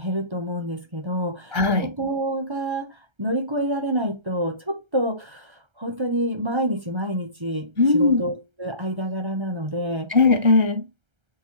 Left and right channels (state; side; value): late; left; 1.3 ms